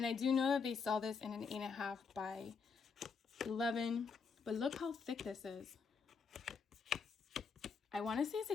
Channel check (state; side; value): quieter; right; 5.4 dB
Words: I do know that they sell this in an 8.5 by 11. But look how thick this is. I want to say it's